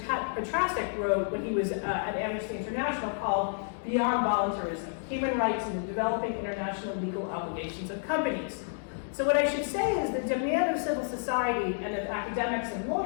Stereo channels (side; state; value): right; silent; digital silence